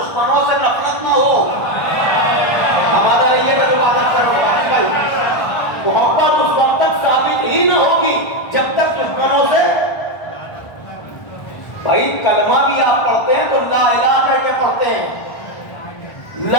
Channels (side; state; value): right; late; 1.4 ms